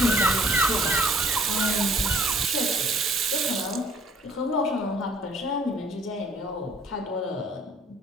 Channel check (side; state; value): both; normal; correlation 0.57